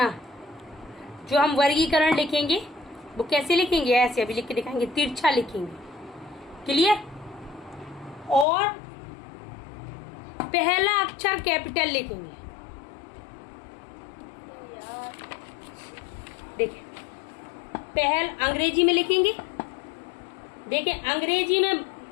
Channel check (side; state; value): right; drops out; at 8.5 s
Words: जो हम वर्गीकरण लिखेंगे वो कैसे लिखेंगे, ऐसे अभी लिख के दिखाएंगे, तिरछा लिखेंगे। क्लियर। और पहला अक्षर कैपिटल लिखेंगे। देखिए पहल अंग्रेजी में लिखेंगे। देखिए अंग्रेजी